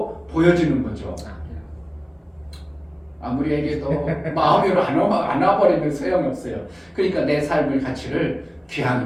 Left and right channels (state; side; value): identical; both; correlation 1.00